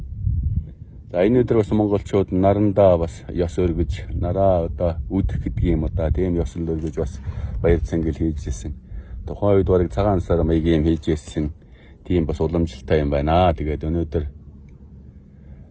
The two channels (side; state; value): both; identical; correlation 1.00